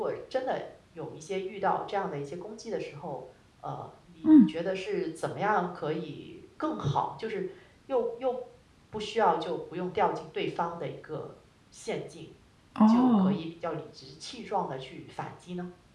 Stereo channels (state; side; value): identical; both; correlation 1.00